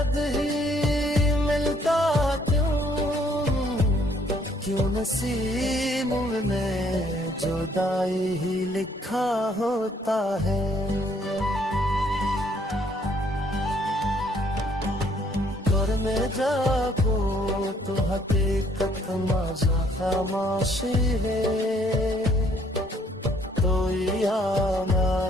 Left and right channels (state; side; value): normal; both; correlation 0.65